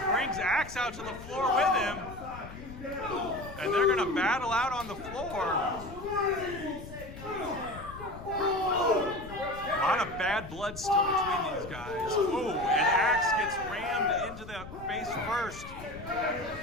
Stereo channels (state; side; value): noise; left; rumble, 14 dB below the sound